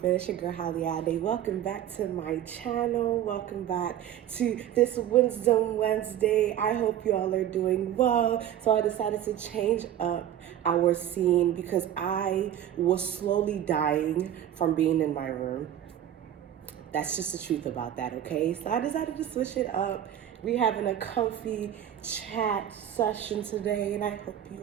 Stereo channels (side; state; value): left; quieter; 10.9 dB